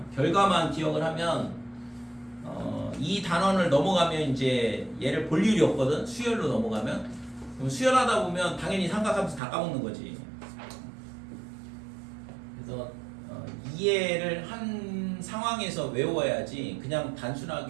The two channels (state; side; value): drops out; left; at 9.4 s